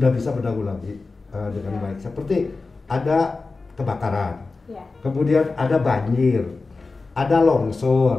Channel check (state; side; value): quieter; right; 3.9 dB